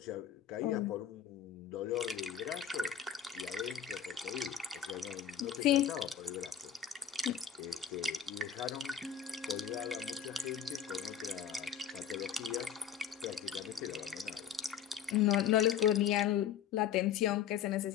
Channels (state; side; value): quieter; right; 8.7 dB